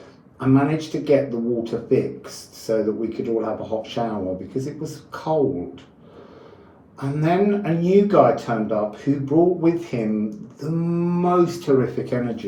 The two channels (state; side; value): identical; both; correlation 1.00